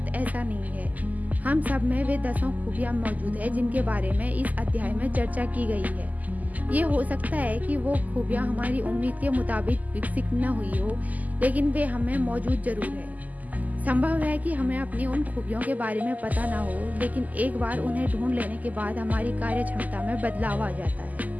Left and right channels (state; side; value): late; left; 0.079 ms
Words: ऐसा नहीं है। हम सब में वे 10 खूबियाँ मौजूद है जिनके बारे में इस अध्याय में चर्चा की गई है। ये हो सकता है कि वो खूबियाँ हमारी उम्मीद के मुताबिक विकसित न हुई हो, लेकिन वे हमें मौजूद ज़रूर है। संभव है कि हमें अपनी उन खूबियों के बारे में पता ना हो, लेकिन एक बार उन्हें ढूंढ लेने के बाद हमारी कार्य क्षमता में बदलाव आ जाता